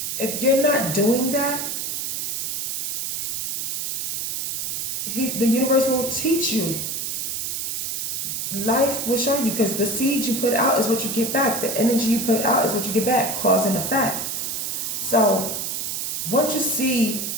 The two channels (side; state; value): right; noise; hiss, 2 dB below the sound